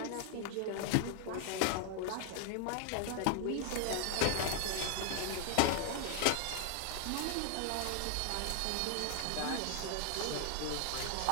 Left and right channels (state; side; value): different; both; correlation 0.00